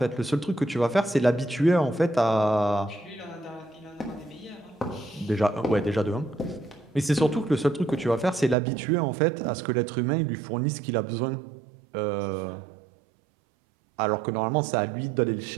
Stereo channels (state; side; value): drops out; left; at 8.6 s